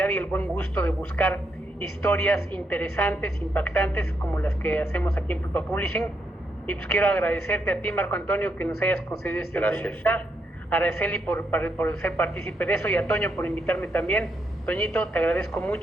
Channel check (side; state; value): both; normal; correlation 0.79